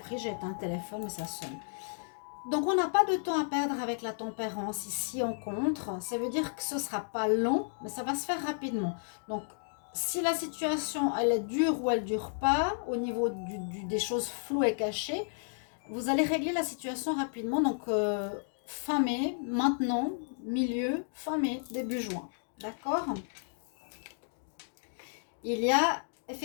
j'ai éteint un téléphone, mais ça sonne. Donc, on n'a pas de temps à perdre avec la tempérance ici en contre. Ça veut dire que ce ne sera pas long, mais ça va se faire rapidement. Donc, si la situation, elle est dure ou elle ne dure pas, au niveau des choses floues et cachées, vous allez régler la situation rapidement. Donc, fin mai, maintenant, milieu, fin mai, début juin. D'accord? Il y a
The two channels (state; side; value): silent; right; digital silence